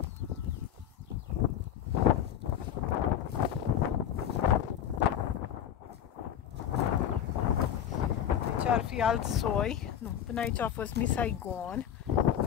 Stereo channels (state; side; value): quieter; right; 9.8 dB